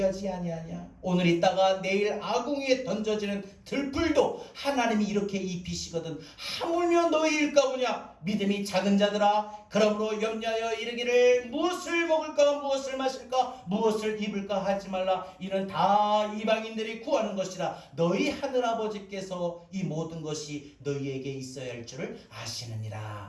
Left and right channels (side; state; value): both; identical; correlation 1.00